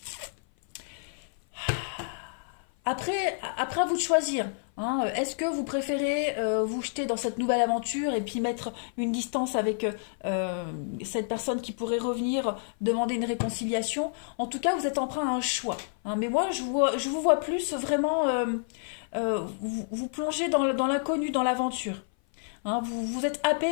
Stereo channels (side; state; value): right; silent; 56 dB below the other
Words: Après à vous de choisir. Hein, est-ce que vous préférez vous jeter dans cette nouvelle aventure et puis mettre une distance avec cette personne qui pourrait revenir demander une réconciliation? En tout cas, vous êtes emprunt à un choix. Hein, mais moi, je vous vois plus vraiment vous plonger dans l'inconnu, dans l'aventure. Hein, vous êtes